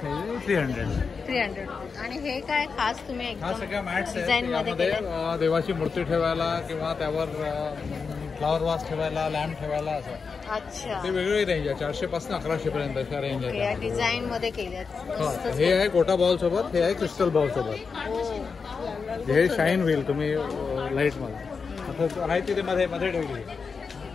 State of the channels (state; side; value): quieter; right; 5.2 dB